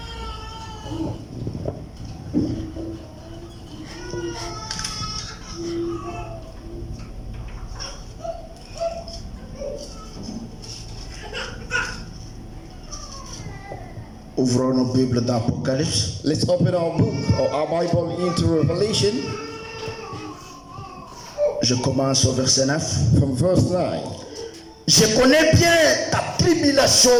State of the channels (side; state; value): both; identical; correlation 1.00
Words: Ouvrons nos Bibles dans Apocalypse. Let's open our book or our Bible into Revelation Je commence au verset 9. from verse 9. Je connais bien ta